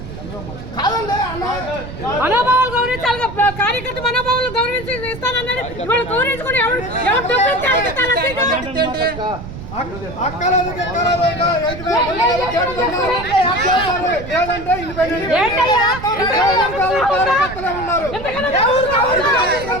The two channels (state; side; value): noise; right; rumble, 11 dB below the sound